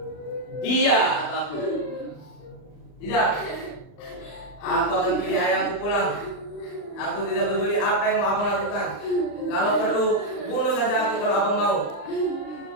dia atau aku. Tidak. Aku akan pilih ayahku pulang. Aku tidak peduli apa yang mau abang lakukan. Kalau perlu, bunuh saja aku kalau abang mau.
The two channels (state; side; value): late; right; 39 ms